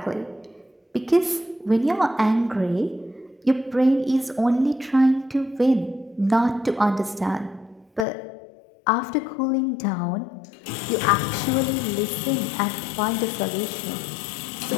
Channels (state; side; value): drops out; right; at 8.1 s